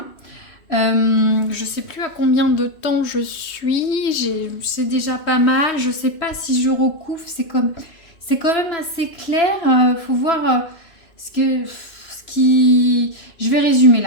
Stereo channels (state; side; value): late; right; 3.0 ms